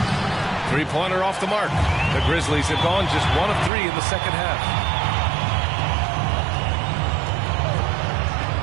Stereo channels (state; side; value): drops out; left; at 3.7 s